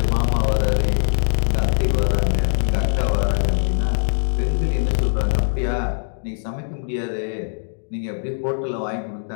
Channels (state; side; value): silent; right; digital silence